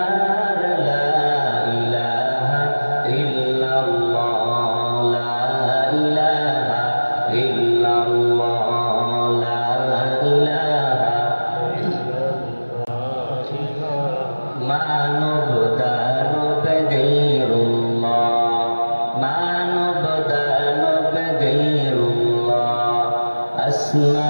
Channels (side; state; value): both; inverted; correlation -1.00